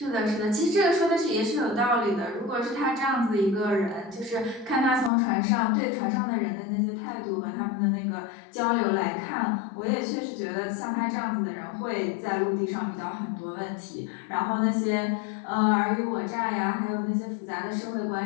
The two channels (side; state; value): right; drops out; at 5.1 s